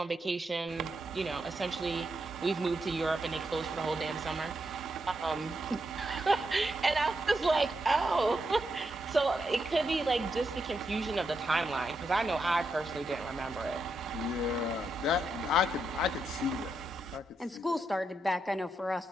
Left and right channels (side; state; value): both; normal; correlation 0.82